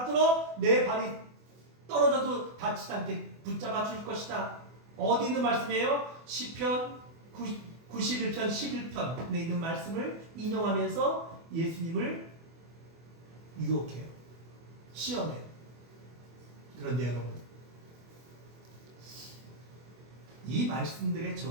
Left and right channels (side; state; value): left; late; 24 ms